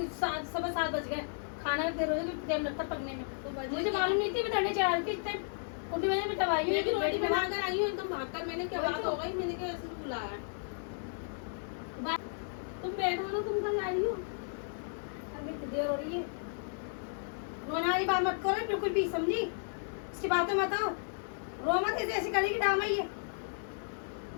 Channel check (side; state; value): right; silent; digital silence